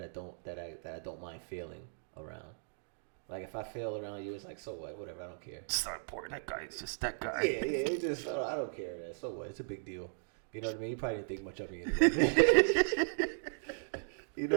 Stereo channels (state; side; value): silent; left; digital silence